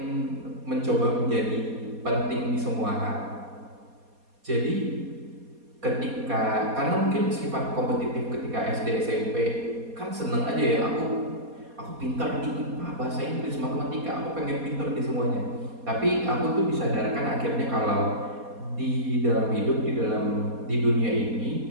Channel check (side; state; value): left; late; 4.2 ms